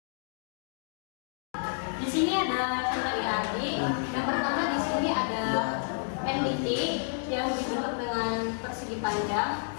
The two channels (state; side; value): silent; right; digital silence